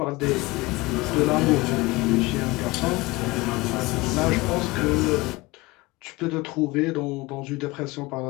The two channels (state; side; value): quieter; right; 21.9 dB